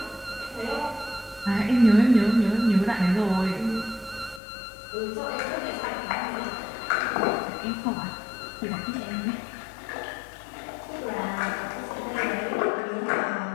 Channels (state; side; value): drops out; right; at 4.4 s